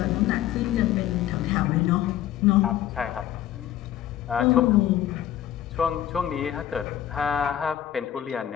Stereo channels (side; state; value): right; quieter; 11.7 dB